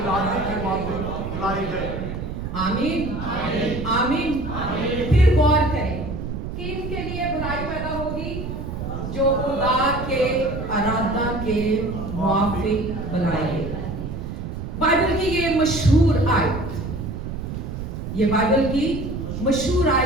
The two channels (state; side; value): noise; right; rumble, 6 dB below the sound